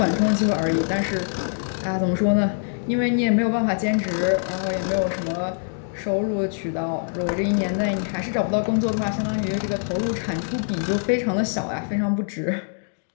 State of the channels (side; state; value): right; silent; digital silence